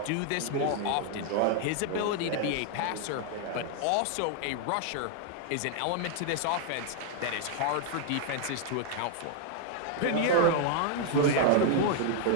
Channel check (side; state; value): both; different; correlation 0.00